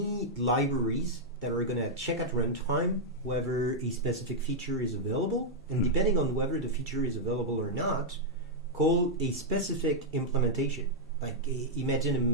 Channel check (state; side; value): normal; both; correlation -0.05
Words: libraries that are going to check at runtime whether a specific feature is available, and depending on whether the feature is available or not, call a specific implementation. Like imagine a